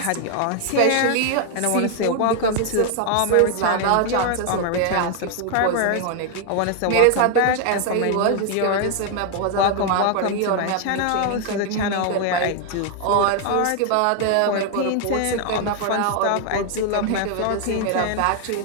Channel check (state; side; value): different; both; correlation 0.00